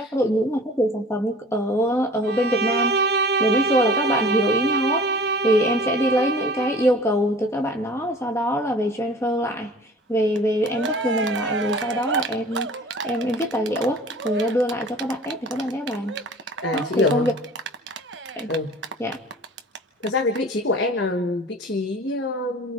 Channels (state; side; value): normal; both; correlation 0.45